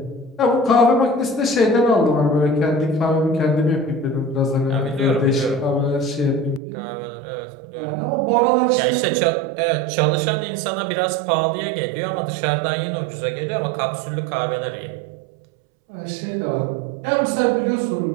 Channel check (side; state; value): left; drops out; at 6.6 s